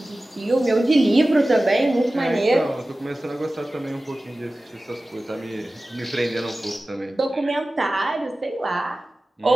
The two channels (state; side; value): normal; both; correlation 0.96